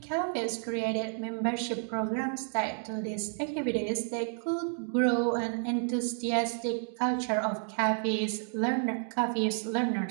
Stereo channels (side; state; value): left; silent; 57 dB below the other